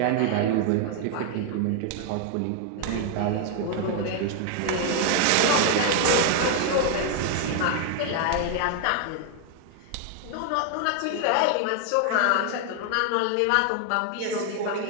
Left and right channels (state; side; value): different; both; correlation 0.00